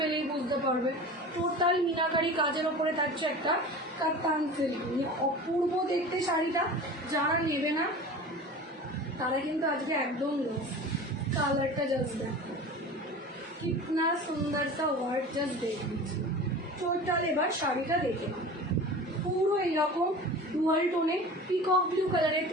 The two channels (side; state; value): both; normal; correlation 0.36